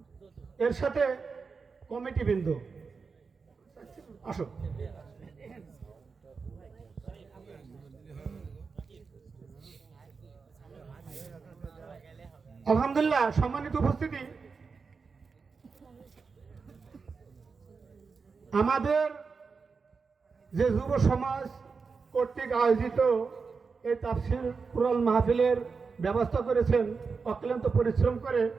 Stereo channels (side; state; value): left; quieter; 5.0 dB